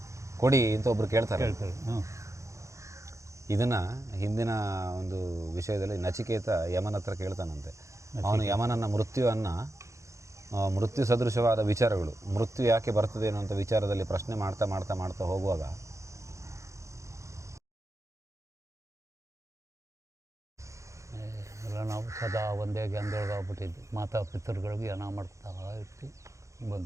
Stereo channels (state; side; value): late; left; 0.15 ms